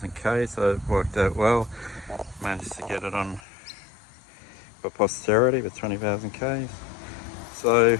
k, so it worked out well. Managed to get it on for posterity with 20,000 k's. So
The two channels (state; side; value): drops out; right; at 3.4 s